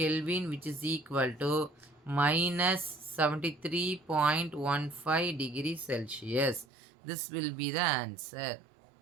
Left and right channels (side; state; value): left; drops out; at 6.7 s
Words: which is equal to minus 73.15 degree Celsius. This will be the answer.